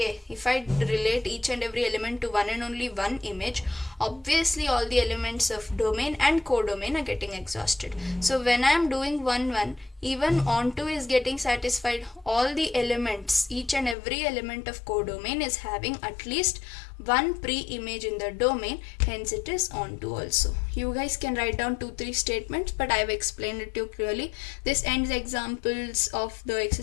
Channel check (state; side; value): drops out; right; at 14.0 s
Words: if I relate each and every element to one and only one image, obviously all the elements of domain and codomain are getting exhausted. So when I am doing 1 1, even onto is getting satisfied. All the elements, each and every element of codomain is having at least one pre-image in the domain, hence it is onto also. You guys can write down 2-3 statements, but I have explained it to you clearly. This ends examples of the